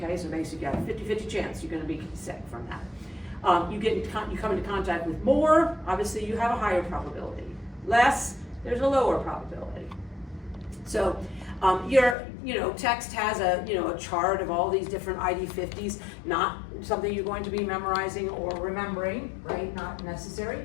so basically you got a 50-50 chance you're gonna be sick from that. You come into contact with more, obviously you have a higher probability. Less, there's a lower probability. So text has a chart of all these different ID50s, not something you're going to be memorizing or remembering, right? Not necessary.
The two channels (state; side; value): drops out; right; at 12.2 s